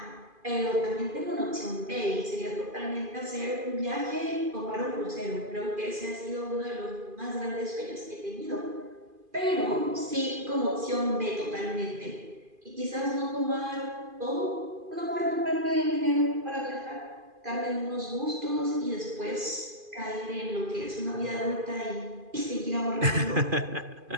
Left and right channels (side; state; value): left; late; 2.5 ms